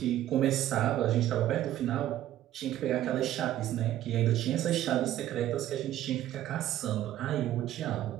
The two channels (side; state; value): left; quieter; 12.9 dB